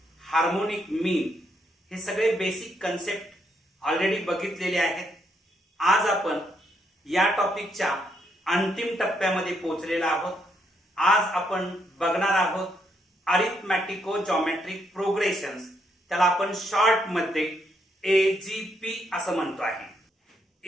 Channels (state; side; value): normal; both; correlation 0.76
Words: harmonic mean हे सगळे बेसिक कन्सेप्ट ऑलरेडी बघितलेले आहेत. आज आपण या टॉपिकच्या अंतिम टप्प्यामध्ये पोहोचलेला आहोत. आज आपण बघणार आहोत अरिथमॅटिको जॉमेट्रिक प्रोग्रेशन्स. त्याला आपण शॉर्ट मध्ये एजीपी असं म्हणतो आहे.